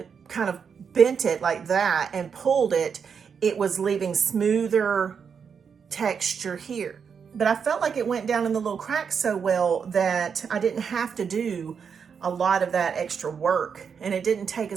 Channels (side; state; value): left; quieter; 6.6 dB